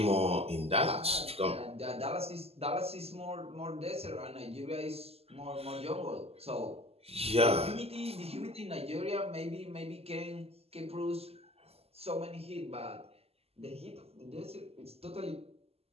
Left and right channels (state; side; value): late; left; 0.29 ms